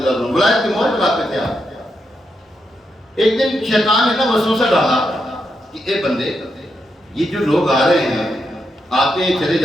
اللہ عنہ ولایت کی مہر لگاتے تھے آپ. ایک دن شیطان نے نا وسوسہ ڈالا کہ اے بندے یہ جو لوگ آ رہے ہیں، آتے ہیں چلے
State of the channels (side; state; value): both; normal; correlation 0.83